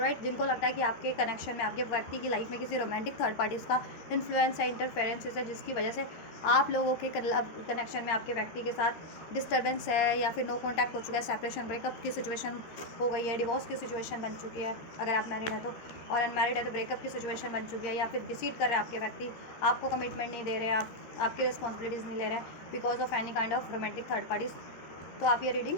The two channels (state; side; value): late; right; 13 ms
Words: जिनको लगता है कि आपके कनेक्शन में, आपके व्यक्ति की लाइफ में किसी रोमांटिक थर्ड पार्टीज़ का इन्फ्लुएंस है, इंटरफेरेंसेस है, जिसकी वजह से आप लोगों के कनेक्शन में आपके व्यक्ति के साथ डिस्टर्बेंस है या फिर नो कॉन्टैक्ट हो चुका है, सेपरेशन, ब्रेकअप की सिचुएशन हो गई है, डिवोर्स की सिचुएशन बन चुकी है अगर आप मैरिड हैं तो, और अनमैरिड है तो ब्रेकअप की सिचुएशन बन चुकी है, या फिर डिसीट कर रहे हैं आपके व्यक्ति, आपको कमिटमेंट नहीं दे रहे, आपकी रिस्पॉन्सिबिलिटीज़ नहीं ले रहे हैं because of any kind of romantic third parties. तो आप ये रीडिंग,